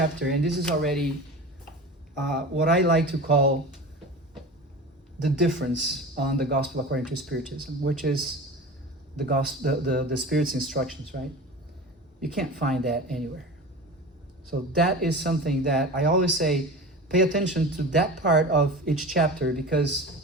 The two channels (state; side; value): normal; both; correlation 0.33